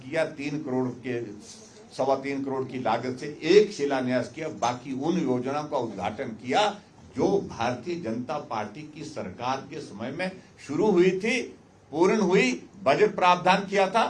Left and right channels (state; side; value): identical; both; correlation 1.00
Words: 3 करोड़ के 3.25 करोड़ की लागत से एक शिलान्यास किया। बाकी उन योजनाओं का उद्घाटन किया जो भारतीय जनता पार्टी की सरकार के समय में शुरू हुई थी, पूर्ण हुई, बजट प्रावधान किया